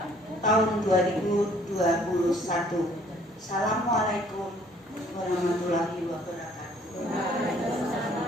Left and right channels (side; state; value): both; normal; correlation 0.59